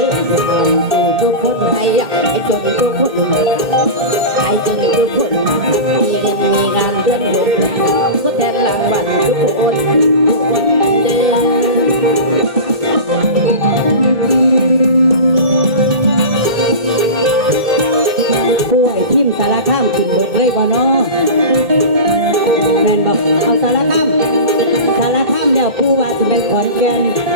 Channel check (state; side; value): late; left; 2.1 ms